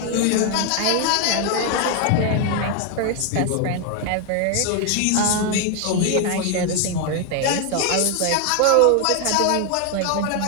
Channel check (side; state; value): both; different; correlation 0.01